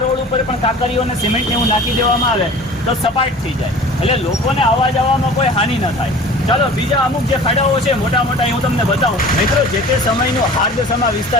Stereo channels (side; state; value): both; normal; correlation 0.42